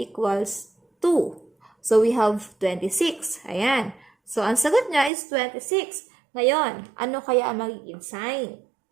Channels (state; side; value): drops out; left; at 5.1 s